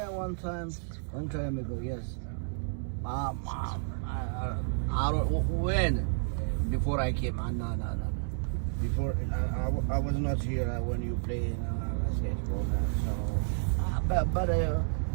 one time ago, yes. I don't when before I came. No. Before I was not here when you played basketball. So, but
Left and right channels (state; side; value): silent; left; digital silence